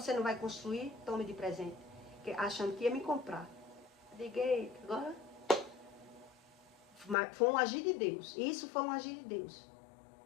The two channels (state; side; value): drops out; right; at 7.2 s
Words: não vai construir? Tome de presente. Achando que ia me comprar. Liguei, agora... Foi um agir de Deus. Isso foi um agir de Deus.